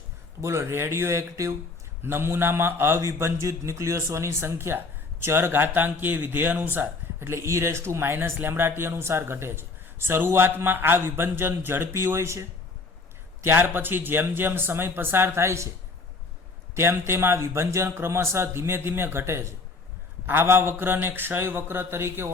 તો બોલો રેડિયો એક્ટિવ નમૂનામાં અવિભંજિત ન્યુક્લિયસોની સંખ્યા ચર ઘાતાંકીય વિધેય અનુસાર એટલે e−λt અનુસાર ઘટે છે. શરૂઆતમાં આ વિભંજન ઝડપી હોય છે. ત્યાર પછી જેમ જેમ સમય પસાર થાય છે તેમ તેમ આ વિભંજન ક્રમશઃ ધીમે ધીમે ઘટે છે. આવા વક્રને ક્ષય વક્ર તરીકે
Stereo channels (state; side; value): quieter; right; 3.9 dB